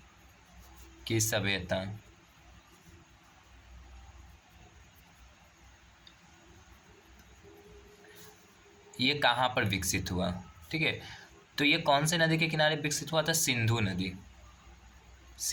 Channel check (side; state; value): both; identical; correlation 1.00